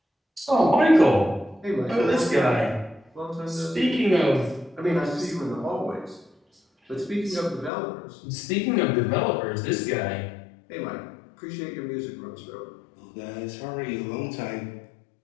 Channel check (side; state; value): right; drops out; at 7.7 s